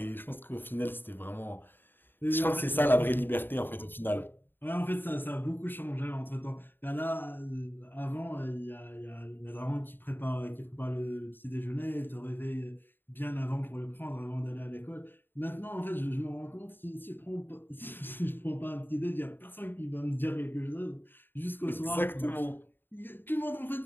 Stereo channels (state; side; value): late; right; 0.095 ms